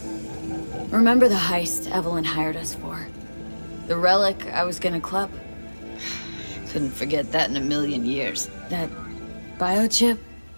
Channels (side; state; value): both; inverted; correlation -1.00